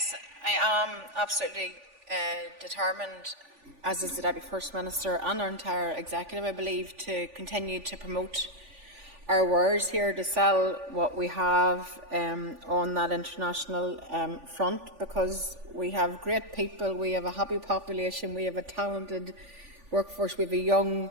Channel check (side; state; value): left; late; 3.5 ms